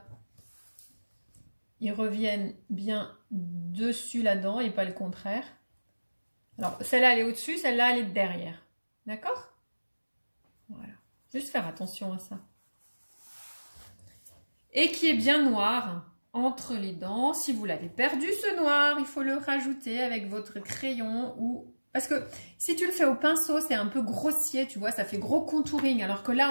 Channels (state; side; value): inverted; both; correlation -1.00